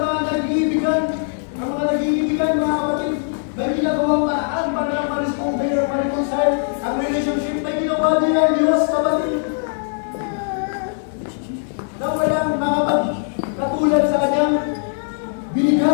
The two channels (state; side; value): silent; right; 65 dB below the other